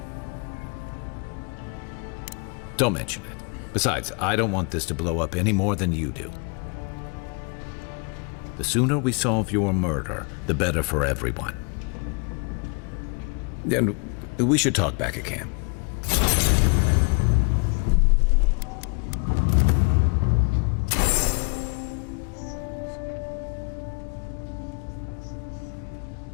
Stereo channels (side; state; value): right; quieter; 34.5 dB